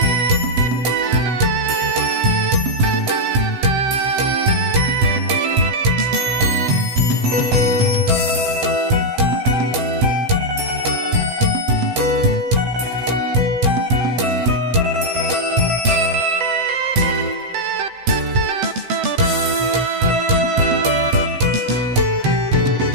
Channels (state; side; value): late; left; 7.9 ms